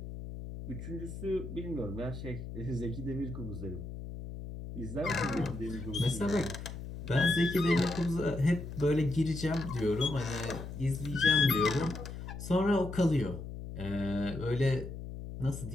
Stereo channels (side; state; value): left; noise; hum, 9 dB below the sound